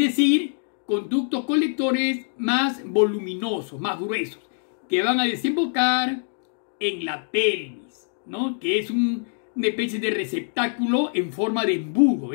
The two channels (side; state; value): right; silent; 62 dB below the other